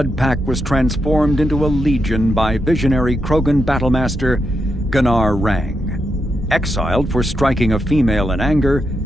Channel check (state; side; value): normal; both; correlation 0.84